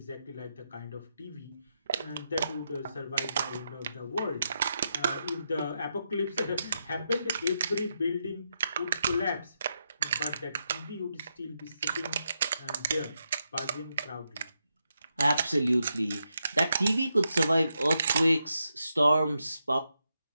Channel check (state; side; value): inverted; both; correlation -0.84